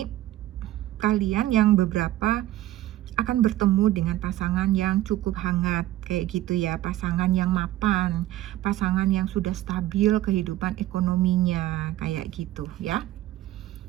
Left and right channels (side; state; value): left; quieter; 14.8 dB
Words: kalian yang beberapa akan bertemu dengan pasangan yang cukup hangat kayak gitu ya, pasangan yang mapan, pasangan yang sudah stabil kehidupan ekonominya kayak gitu ya.